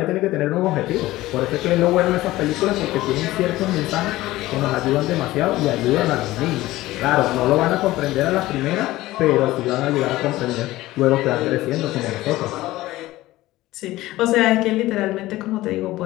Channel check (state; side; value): quieter; right; 17.2 dB